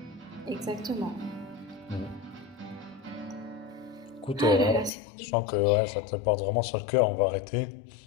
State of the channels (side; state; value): right; drops out; at 4.9 s